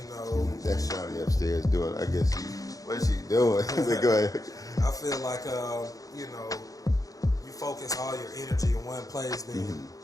know, that's Shawty upstairs doing. I guess what is she doing? Go ahead. I feel like you know, you focus all your energy in one place. Then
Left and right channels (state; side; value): late; right; 0.17 ms